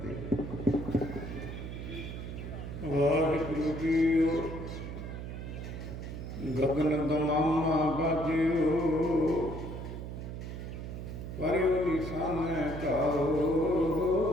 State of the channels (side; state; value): right; noise; hum, 7 dB below the sound